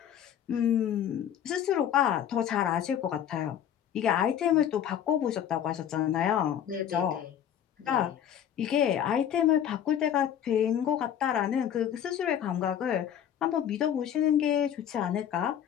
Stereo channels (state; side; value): quieter; right; 9.7 dB